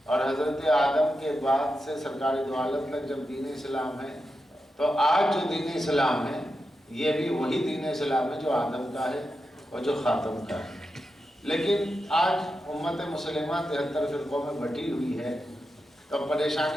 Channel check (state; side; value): normal; both; correlation 0.88